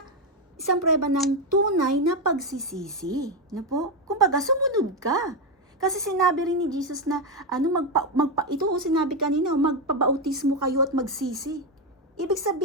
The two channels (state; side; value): normal; both; correlation 0.07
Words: ng tunay na pagsisisi, no po? Kumbaga, sumunod ka. Kasi sinabi rin ni Jesus na, ito sinabi kanina, magpabautismo kayo at magsisi. Ibig